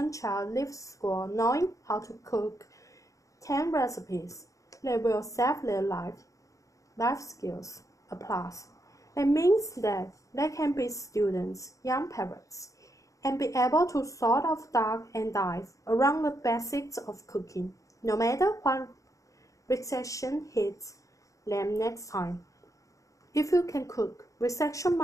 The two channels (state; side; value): late; right; 0.16 ms